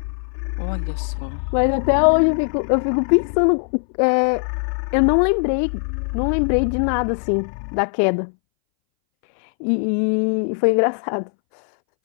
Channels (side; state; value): right; silent; 63 dB below the other